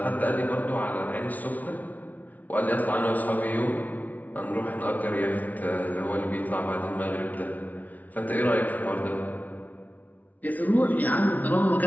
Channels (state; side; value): late; right; 0.075 ms